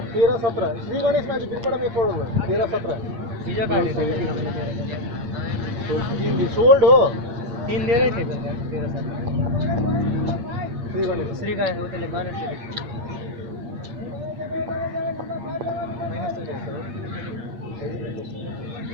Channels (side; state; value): left; late; 8.7 ms